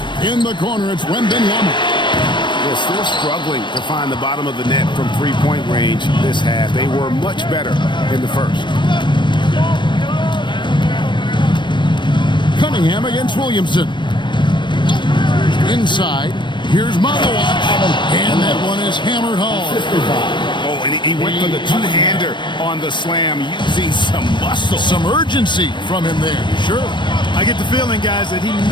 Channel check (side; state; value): right; late; 0.22 ms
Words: In the corner, it's Wembanyama. They're still struggling to find the bottom of the net from three-point range this half. They were much better in the first. Cunningham against Williamson. Inside, here's Malawach, and that one is hammered home. Oh, and he went for the two-hander on the slam using some muscle. Some urgency from him there, sure. I get the feeling, guys, that he